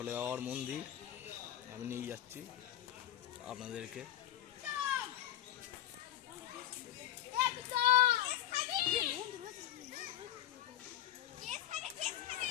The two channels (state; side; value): quieter; right; 12.9 dB